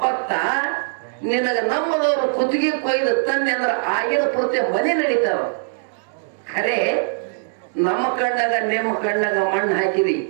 ನಿನಗ ನಮ್ಮದವ್ರು ಕುತ್ತಿಗೆ ಕೊಯ್ದು ತಂದೆ ಅಂದ್ರೆ ಆಗಿನ ಪೂರ್ತಿ ಮನೆ ನಡೀತಾವ. ಖರೆ ನಮ್ಮ ಕಣ್ಣಾಗ ನಿಮ್ಮ ಕಣ್ಣಾಗ ಮಣ್ಣು ಹಾಕಿದಿ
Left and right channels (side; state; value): left; silent; digital silence